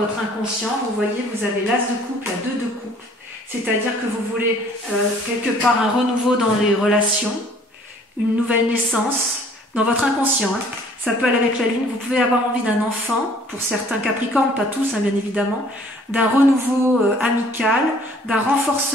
inconscient, vous voyez, vous avez l'as de coupe, la 2 de coupe. C'est-à-dire que vous voulez quelque part un renouveau dans les relations, une nouvelle naissance, dans votre inconscient, hein. Ça peut aller avec la lune. Vous pouvez avoir envie d'un enfant, pour certains capricornes, pas tous, hein, bien évidemment, d'un renouveau amical, d'un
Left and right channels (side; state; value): both; normal; correlation 0.56